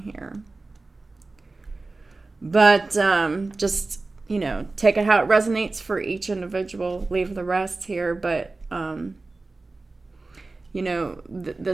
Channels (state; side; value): quieter; left; 3.4 dB